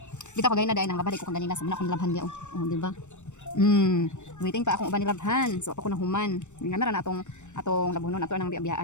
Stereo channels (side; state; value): right; late; 0.84 ms